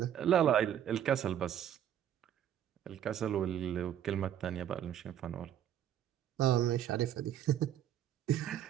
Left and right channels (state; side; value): quieter; left; 10.3 dB